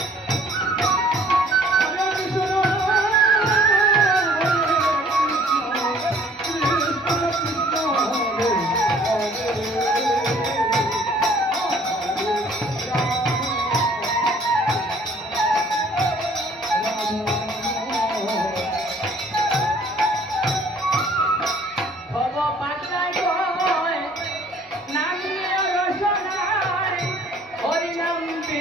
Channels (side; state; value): both; normal; correlation 0.56